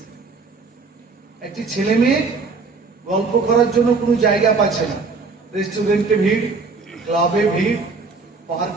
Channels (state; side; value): quieter; left; 4.3 dB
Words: একটি ছেলে মেয়ে গল্প করার জন্য কোনো জায়গা পাচ্ছে না, রেস্টুরেন্টে ভিড়, ক্লাবে ভিড়,